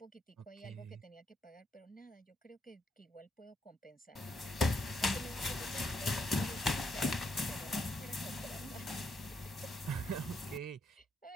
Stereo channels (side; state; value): both; normal; correlation 0.77